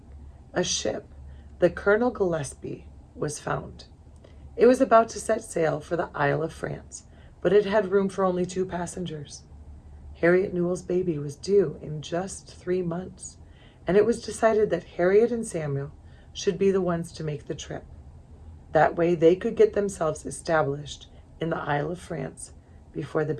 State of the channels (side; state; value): both; identical; correlation 1.00